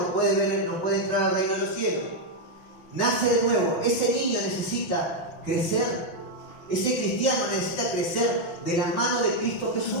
puede entrar al reino de los cielos. Nace de nuevo. Ese niño necesita crecer. Ese cristiano necesita crecer de la mano de Cristo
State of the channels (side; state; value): right; late; 5.5 ms